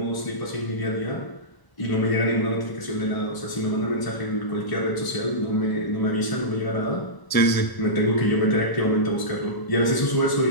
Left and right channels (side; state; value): right; late; 1.0 ms